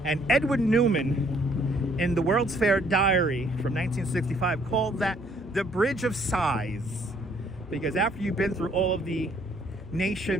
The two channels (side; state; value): both; normal; correlation 0.64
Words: and Edwin Newman in the World's Fair Diary from 1965 called that the Bridge of Sighs, because after you've been through all of the